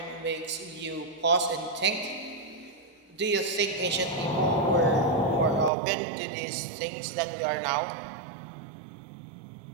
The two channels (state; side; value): drops out; left; at 5.7 s